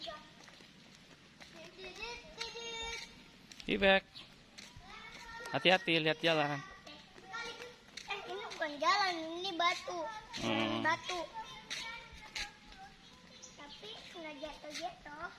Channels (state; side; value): identical; both; correlation 1.00